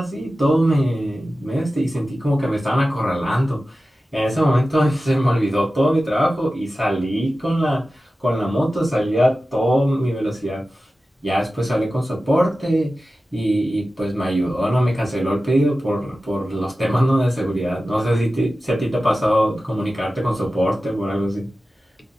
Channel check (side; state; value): both; normal; correlation 0.94